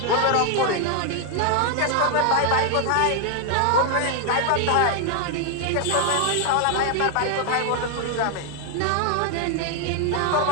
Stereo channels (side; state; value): both; different; correlation 0.00